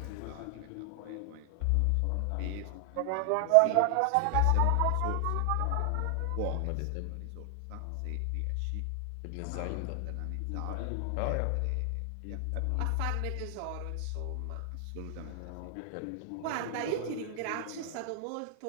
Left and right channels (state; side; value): different; both; correlation 0.00